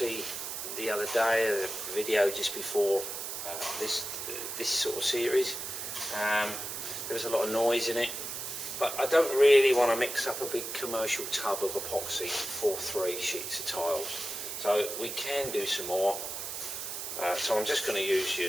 the other day, a video just before this sort of series. There was a lot of noise in it, but I don't really want to mix up a big commercial tub of epoxy for 3 sheets of tiles. So we can do some more. So I'm just going to use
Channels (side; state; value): right; noise; hiss, 6 dB below the sound